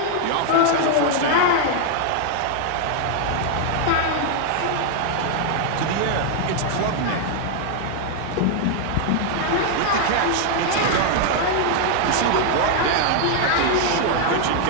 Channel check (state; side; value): different; both; correlation 0.00